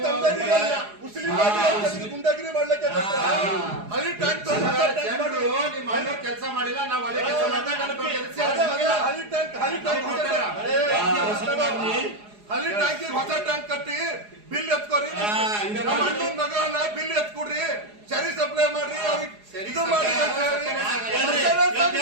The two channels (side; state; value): left; late; 4.8 ms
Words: ತಮ್ಮದಾರಿಗೆ ಮುಸ್ಲಿಂ ಗುಂಡಾಗಿರಿ ಮಾಡ್ಲಿಕ್ಕೆ ಹಳಿ ಟ್ಯಾಂಕ್ ಜನರು ನಿಮ್ಮ ಮನೆ ಕೆಲಸ ಮಾಡಿಲ್ಲ, ನಾವು ಒಳ್ಳೆ ಕೆಲಸ ಮಾಡ್ತಾ ಹಳಿ ಟ್ಯಾಂಕ್ ಹಳಿ ಟ್ಯಾಂಕ್ ಹೊಸ ಟ್ಯಾಂಕ್ ಕಟ್ಟಿ ಬಿಲ್ ಎತ್ಕೋರಿ. ನಮ್ಮ ಅಣ್ಣನ ಮಗನ ಬಿಲ್ ಎತ್ಕೊಡ್ರಿ, ಸರಿ ಸಪ್ಲೈ ಮಾಡ್ರಿ, ಅವ್ರಿಗೆ ಇದು ಮಾಡಿ